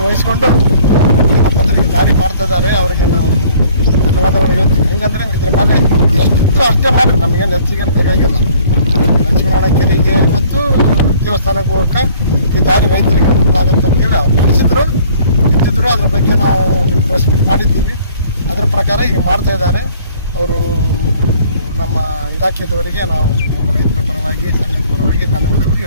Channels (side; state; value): both; inverted; correlation -0.56